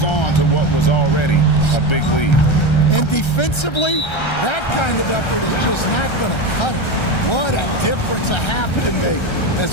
on to what was already a big lead. And defensively, that kind of effort is just not going to cut it. What a difference a half can make.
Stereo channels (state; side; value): late; right; 1.3 ms